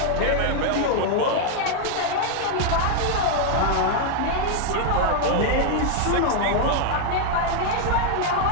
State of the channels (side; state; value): both; different; correlation 0.00